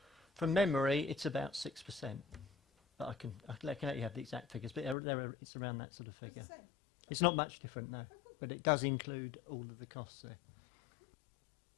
From memory, it's about 6%. But I can let you have the exact figures, but it's around that sort of figure. It's not much different, no, but it does include all of the costs there.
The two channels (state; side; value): drops out; right; at 5.0 s